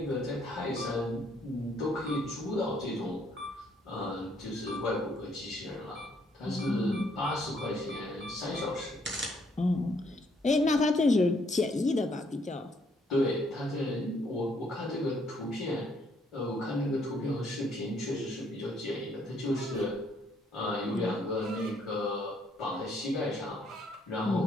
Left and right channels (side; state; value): both; normal; correlation 0.68